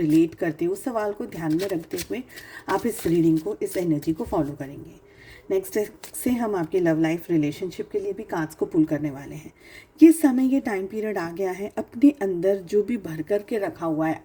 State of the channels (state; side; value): identical; both; correlation 1.00